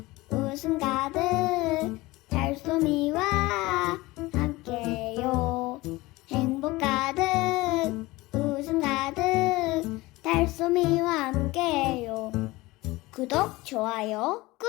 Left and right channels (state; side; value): quieter; right; 20.5 dB